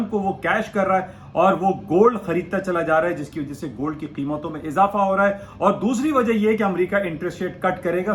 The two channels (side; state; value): both; identical; correlation 1.00